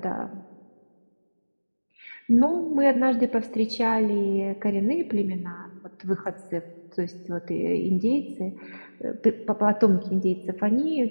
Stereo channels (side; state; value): both; inverted; correlation -1.00